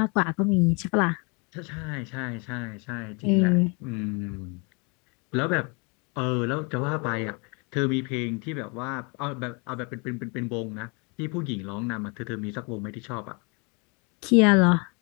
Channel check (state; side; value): quieter; right; 32.3 dB